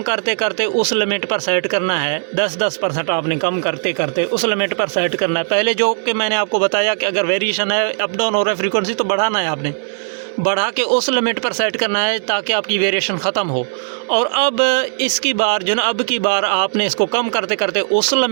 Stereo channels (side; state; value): left; silent; digital silence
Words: करते करते उस लिमिट पर सेट करना है, 10% आपने कम करते करते उस लिमिट पर सेट करना है। पहले जो कि मैंने आपको बताया कि अगर वेरिएशन है, अप डाउन हो रहा है फ्रीक्वेंसी, तो बढ़ाना है, आपने बढ़ा के उस लिमिट पर सेट करना है ताकि आपकी वेरिएशन ख़त्म हो। और अब इसकी बार जो ना, अब की बार आपने इसको कम करते करते उस